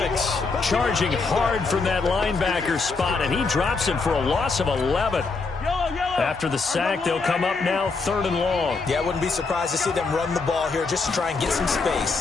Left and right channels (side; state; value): right; quieter; 4.2 dB